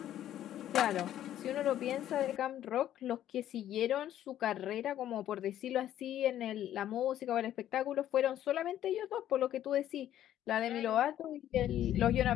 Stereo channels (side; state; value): right; quieter; 11.9 dB